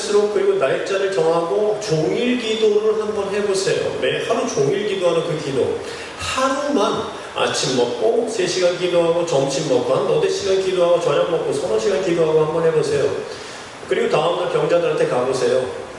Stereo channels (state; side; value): identical; both; correlation 1.00